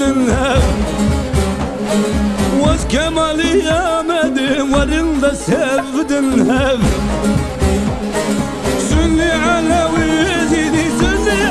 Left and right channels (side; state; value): both; identical; correlation 1.00